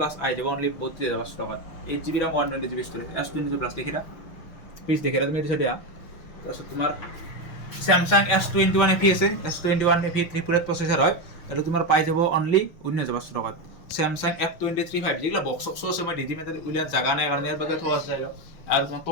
আই যাব অনলি 32000 টাকা 8GB RAM 120GB storage S22 plus দেখিরা প্লিজ দেখিরা তুমি এটা সাইডে তারপর তোমার স্যামসাং S21 FE আছে S21 FE 3 প্রসেসর হয় এটা তোমার পাই যাব অনলি 19000 টাকা স্যামসাং F23 5G এগুলা বক্স আছে মই দিদি মেতে উইলা জায়গা নাই কারণে এর বাগে থোয়া চাইলো আর তোমার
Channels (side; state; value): right; late; 6.1 ms